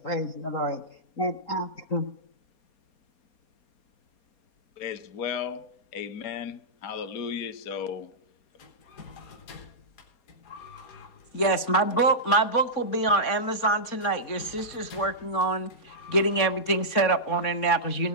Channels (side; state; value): right; late; 4.3 ms